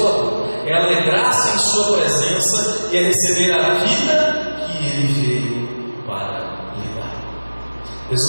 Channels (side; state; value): both; inverted; correlation -1.00